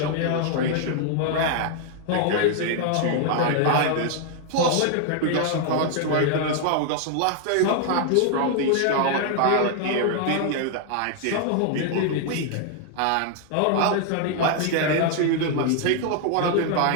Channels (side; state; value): both; different; correlation 0.00